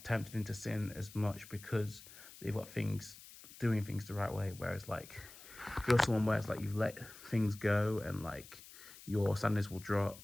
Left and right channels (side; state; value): left; noise; hiss, 18 dB below the sound